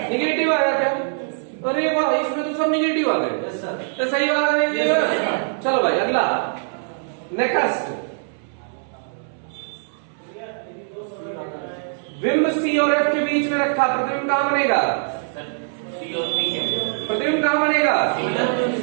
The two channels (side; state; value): left; silent; 64 dB below the other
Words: निगेटिव आया क्या? अरे वाह, इसमें तो सब निगेटिव आ गए, तो सही बात है। चलो भाई अगला, नेक्स्ट, विम्ब सी और एफ के बीच में रखा, प्रतिबिंब कहां बनेगा? प्रतिबिंब कहां बनेगा?